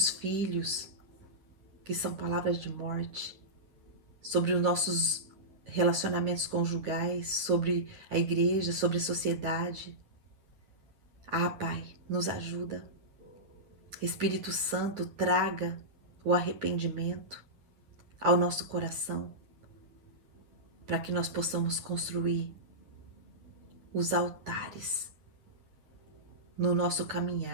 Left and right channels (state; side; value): late; left; 9.9 ms